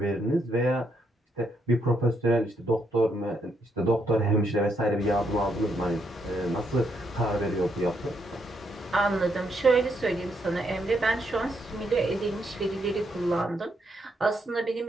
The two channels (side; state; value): both; normal; correlation 0.76